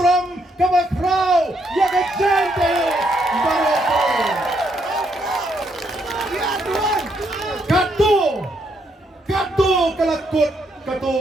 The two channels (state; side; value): normal; both; correlation 0.74